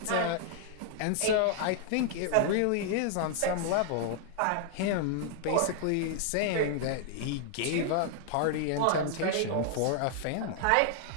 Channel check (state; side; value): different; both; correlation 0.00